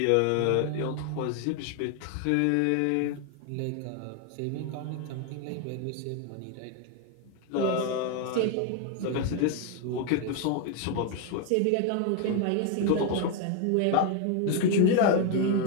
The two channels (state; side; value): different; both; correlation 0.01